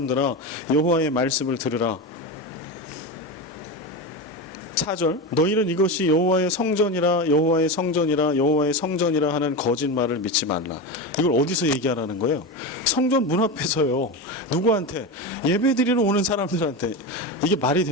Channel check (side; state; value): both; normal; correlation 0.19